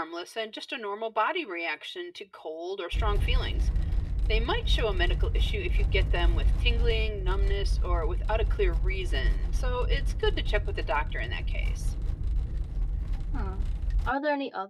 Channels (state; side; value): identical; both; correlation 1.00